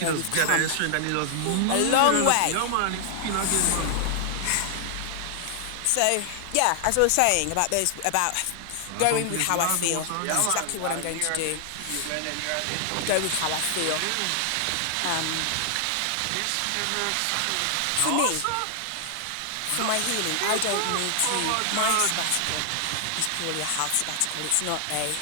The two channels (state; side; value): different; both; correlation 0.00